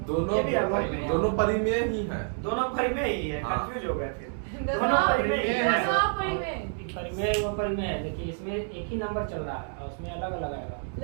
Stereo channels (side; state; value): left; silent; 57 dB below the other